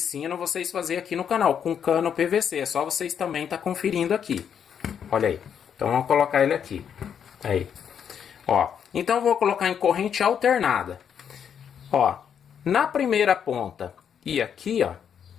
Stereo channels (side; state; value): right; quieter; 8.1 dB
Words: vocês a fazer aqui no canal, com cano PVC. É só vocês também tá conferindo aqui. Olha aí. Então, vamos colocar ele aqui. Aí. Ó, então eu vou colocar em corrente alternada. Ó, na primeira ponta e aqui, ó,